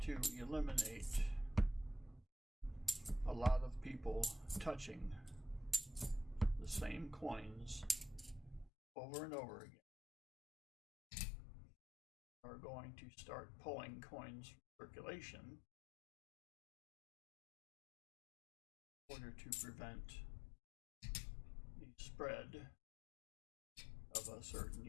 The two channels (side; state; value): right; drops out; at 8.7 s